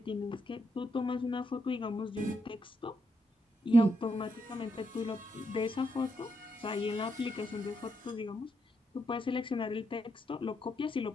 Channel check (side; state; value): both; normal; correlation 0.80